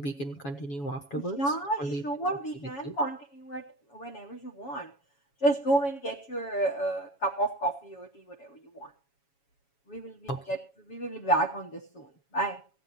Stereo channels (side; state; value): right; late; 7.2 ms